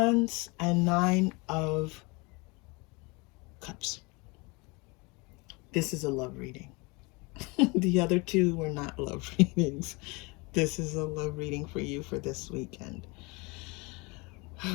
and 9 of Cups. This is a love reading. The other two were not love readings. This is a love reading for you for this weekend.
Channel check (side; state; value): right; quieter; 27.4 dB